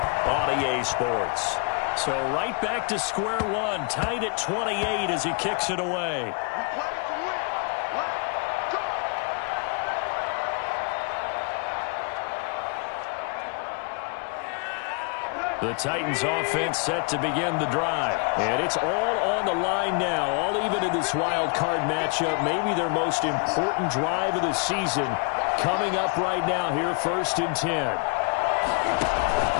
on EA Sports. So right back to square one, tied at 28 as he kicks it away. The Titans offense set to begin the drive. And it's all on the line now, all even in this wild card matchup. Maybe their most important drive of the season coming up right now here, 1st and 10.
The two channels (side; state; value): right; quieter; 34.8 dB